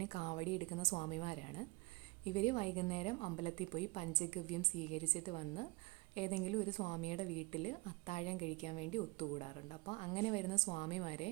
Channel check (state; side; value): quieter; left; 23.8 dB